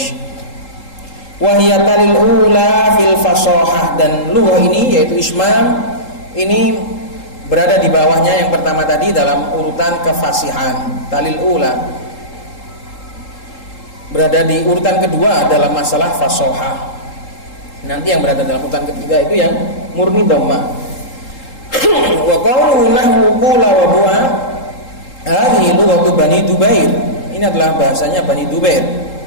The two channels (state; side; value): late; right; 3.8 ms